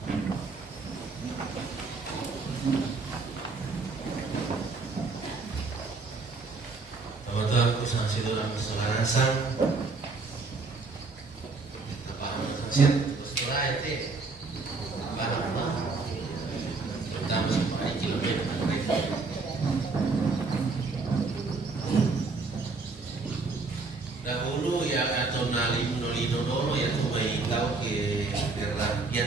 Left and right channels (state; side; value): quieter; left; 4.0 dB